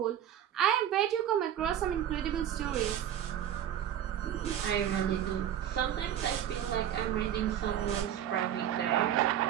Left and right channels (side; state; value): left; quieter; 10.5 dB